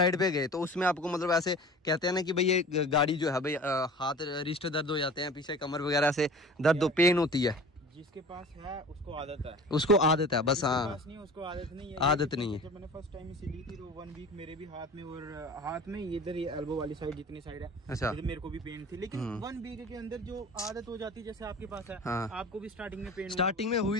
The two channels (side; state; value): both; normal; correlation 0.40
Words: पे गए, तो उसमें आपको मतलब ऐसे कहते हैं ना कि भाई ये गाड़ी जो है भाई हाथ रिस्ट दर्द हो जाते हैं, पीछे कमर वगैरह से दर्द पेन होती है। जिसके पास है उसको आदत है, बस। हाँ, नहीं उसको आदत नहीं है, आदत नहीं है। जब मैंने फर्स्ट टाइम इसे ली थी तो 1 वीक मेरे भी हाथ में, और हाथ में इधर ये एल्बो वाली साइड जितनी साइड है, अच्छा, मेरे को भी पेन थी, लेकिन 1 वीक के अंदर जो आदत हो जाती है, जैसे आपके पास है, हाँ, आपको भी स्टार्टिंग में पेन, स्टार्टिंग में